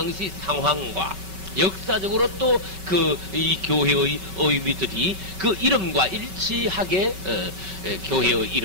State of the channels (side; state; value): left; late; 5.3 ms